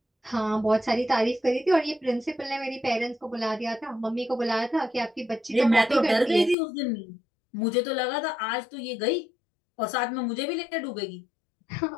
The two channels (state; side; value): drops out; right; at 6.6 s